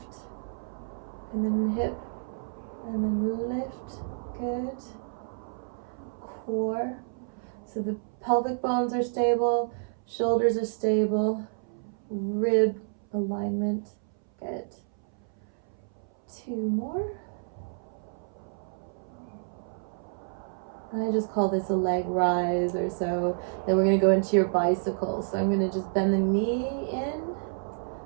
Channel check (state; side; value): silent; left; 58 dB below the other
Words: and then hip, and then lift. Good. Core. So the pelvic bones are stable, shoulders are stable, rib alignment. Good. 2 more. I just call this a leg rise or so. Then we're going to go into your bicycle. So I'm going to just bend the knee in.